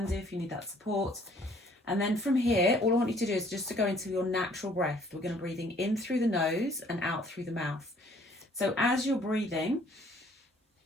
do if you need that support. And then from here, all I want you to do is just to go into your natural breath. We're going to breathing in through the nose and out through the mouth. So as you're breathing,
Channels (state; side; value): normal; both; correlation 0.59